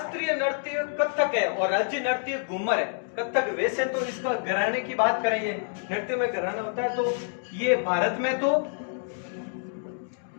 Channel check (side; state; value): right; silent; digital silence